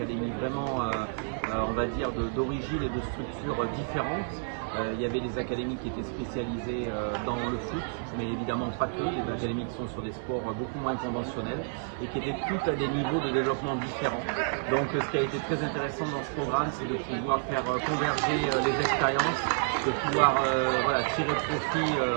vraiment, on va dire, d'origine et de structures différentes. Il y avait des académies qui étaient spécialisées dans le foot, mais évidemment pas que, des académies qui sont sur des sports beaucoup moins conventionnels et qui étaient toutes à des niveaux de développement différents. Donc ce qui a été très intéressant dans ce programme, c'est de pouvoir faire converger les expériences, de pouvoir tirer profit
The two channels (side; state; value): left; silent; 58 dB below the other